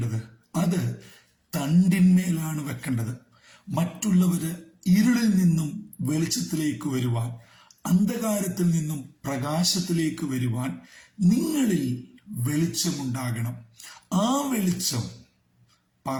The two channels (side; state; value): both; identical; correlation 1.00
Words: അത് തണ്ടിന്മേലാണ് വെക്കേണ്ടത്. മറ്റുള്ളവര് ഇരുളിൽ നിന്നും വെളിച്ചത്തിലേക്ക് വരുവാൻ, അന്ധകാരത്തിൽ നിന്നും പ്രകാശത്തിലേക്ക് വരുവാൻ നിങ്ങളിൽ വെളിച്ചമുണ്ടാകണം. ആ വെളിച്ചം